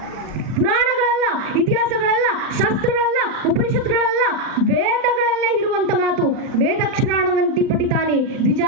ಪುರಾಣಗಳಲ್ಲ, ಇತಿಹಾಸಗಳಲ್ಲ, ಶಾಸ್ತ್ರಗಳಲ್ಲ, ಉಪನಿಷತ್ಗಳಲ್ಲ, ವೇದಗಳಲ್ಲೇ ಇರುವಂತ ಮಾತು. ವೇದಕ್ಷರಾಣವಂತಿ ಪಠಿತಾನಿ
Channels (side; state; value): left; late; 39 ms